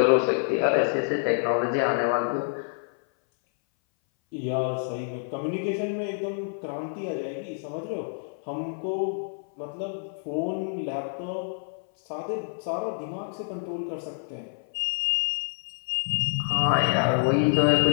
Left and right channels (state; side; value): silent; right; 58 dB below the other